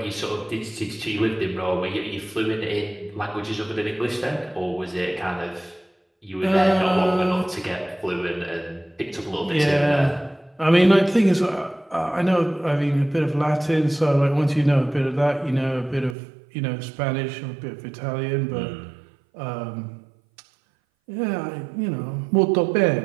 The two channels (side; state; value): left; drops out; at 16.2 s